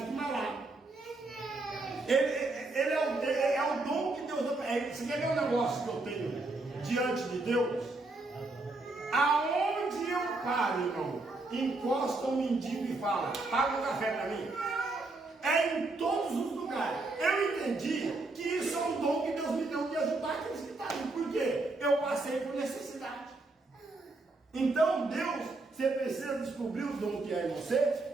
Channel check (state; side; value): quieter; left; 3.2 dB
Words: vai lá. Ele é o dom que Deus dá. Você quer ver um negócio que eu tenho diante de Deus? Aonde eu paro, irmão, encosta um mendigo e fala: paga um café para mim. É em todos os lugares. Eu entendi que isso é um dom que Deus me deu de ajudar aqueles que estão ali. Por quê? Eu passei por necessidade. Então, Deus, você precisa descobrir o dom que é em você,